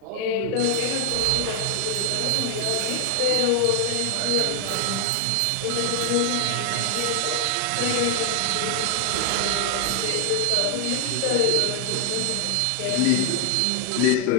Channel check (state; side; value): different; both; correlation 0.00